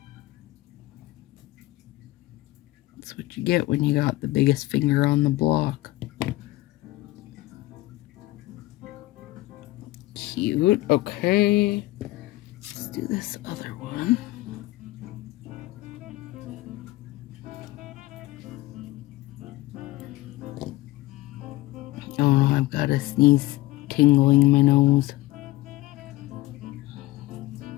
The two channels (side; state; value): right; quieter; 18.2 dB